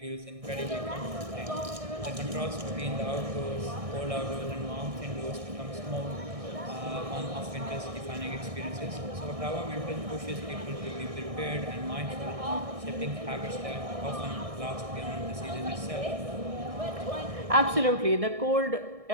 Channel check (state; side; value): late; left; 1.6 ms